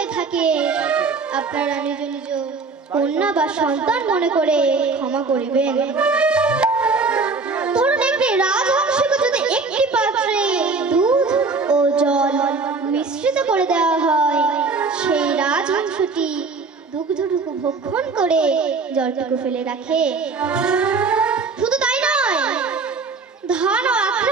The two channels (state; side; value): quieter; left; 4.3 dB